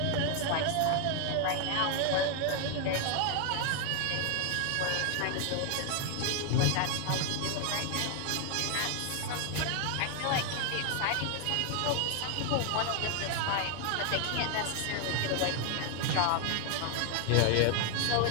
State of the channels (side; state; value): both; different; correlation 0.00